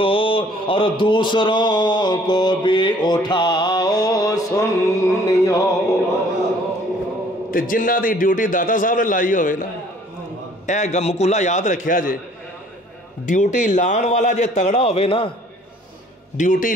اور دوسروں کو بھی اٹھاؤ سنیوں۔ تے جنہ دی ڈیوٹی داتا صاحب نے لائی ہوئے نا، اے مقولہ یاد رکھیا جے، ڈیوٹی لان والا جے تگڑا ہوئے نا، ڈیوٹی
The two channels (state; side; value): normal; both; correlation 0.57